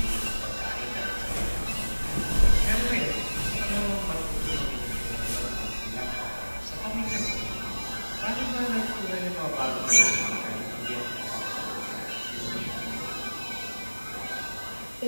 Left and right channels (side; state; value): both; inverted; correlation -1.00